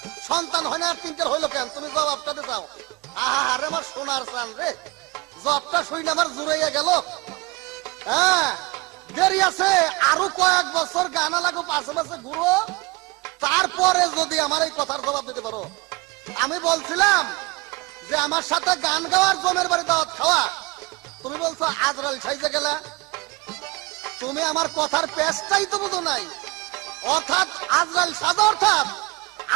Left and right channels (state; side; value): quieter; left; 23.0 dB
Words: সন্তান হয় না, 3টার হইলো কেন? তুমি জবাবটা দিতে চাও? আরে আমার সোনার চান রে, জবটা শুই না আমার জুড়াইয়া গেল। হ্যাঁ, দেরি আছে, আরো কয়েক বছর গানা লাগো, পাশে পাশে ঘুরো, তারপরে যদি আমার এই কথার জবাব দিতে পারো। আমি বলছিলাম যে আমার সাথে গান গাওয়ার জমের বাড়ি দাওয়াত খাওয়া, তুমি বলছো আজরাল সাইজে গেলা। তুমি আমার কথার পেশটাই তো বুঝো নাই। অর্থাৎ আজরাল সাজা, অর্থাৎ